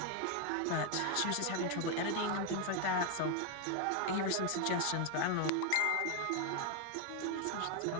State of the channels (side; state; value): both; different; correlation 0.01